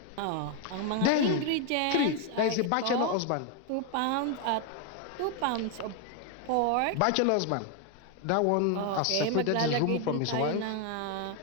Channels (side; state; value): both; different; correlation 0.01